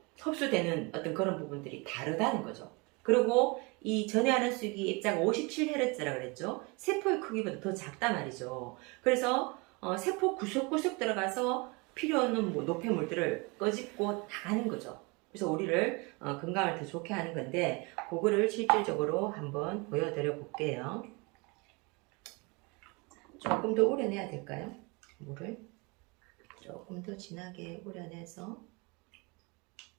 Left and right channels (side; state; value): left; quieter; 28.0 dB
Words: 흡수되는 어떤 그런 부분들이 다르다는 거죠. 그리고 이 전해 환원수기 입자가 57Hz라 그랬죠. 세포의 크기보다 더 작단 말이죠. 그래서 세포 구석구석 들어가서 필요 없는 노폐물들을 꺼집고 나가는 거죠. 그래서 우리를 건강을 더 좋게 하는 건데 그거를 실질적으로 한번 보여드려 볼게요. 조금 더 우려내야 될까요? 물을 조금 더 진하게 우려내서